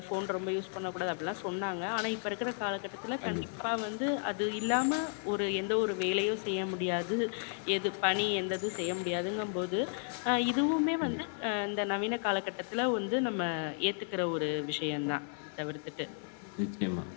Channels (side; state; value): right; silent; 55 dB below the other